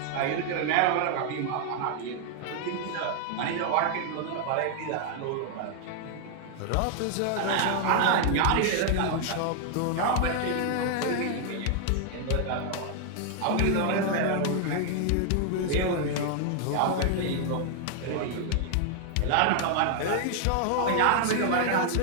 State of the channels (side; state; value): both; different; correlation 0.00